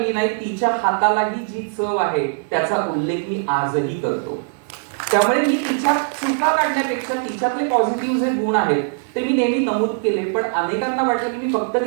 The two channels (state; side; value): silent; left; digital silence